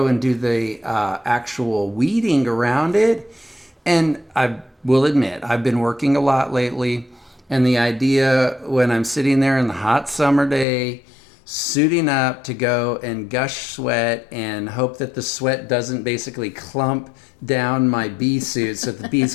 and do the actual weeding around it. And I will admit, I've been working a lot lately. And the idea when I'm sitting there in the hot summer day, suiting up to go and gush sweat and hope that the sweat doesn't basically clump down my bee suit so that the bees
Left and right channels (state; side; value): drops out; right; at 10.7 s